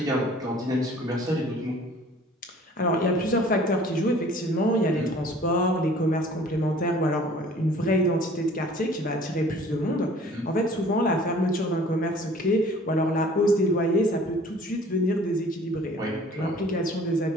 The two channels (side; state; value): both; normal; correlation 0.51